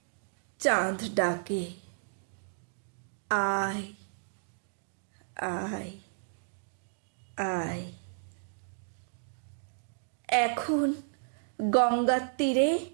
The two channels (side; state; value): left; silent; digital silence